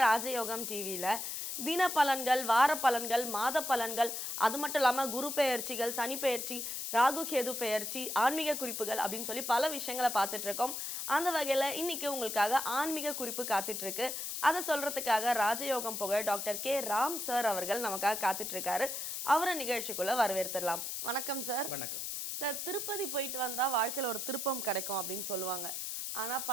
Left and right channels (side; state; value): left; noise; hiss, 4 dB below the sound